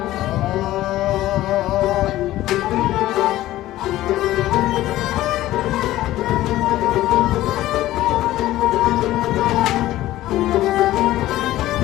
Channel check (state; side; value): quieter; right; 15.3 dB